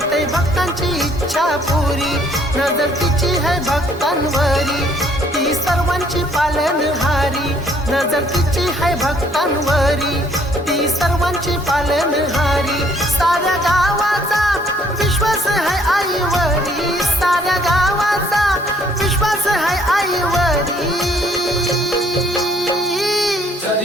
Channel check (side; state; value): both; normal; correlation 0.63